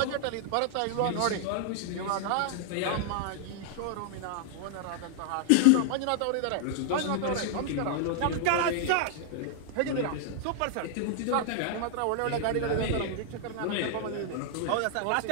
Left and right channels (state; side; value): different; both; correlation -0.01